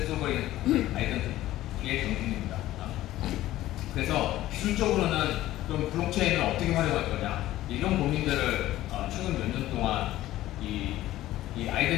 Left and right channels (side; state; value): right; quieter; 15.0 dB